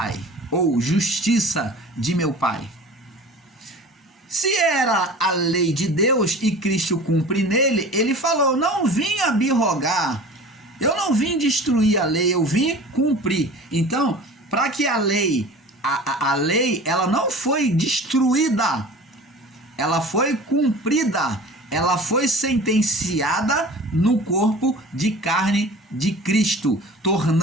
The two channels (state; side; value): normal; both; correlation 0.40